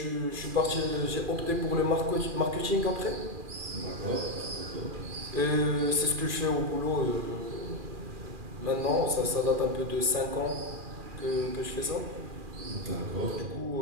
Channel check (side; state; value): left; late; 2.4 ms